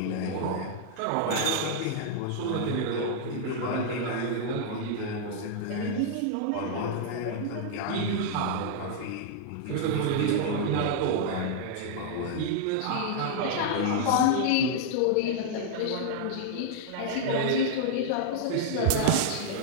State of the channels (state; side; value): different; both; correlation -0.01